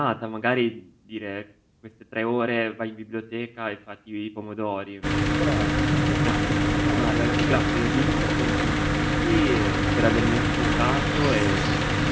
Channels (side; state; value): both; identical; correlation 1.00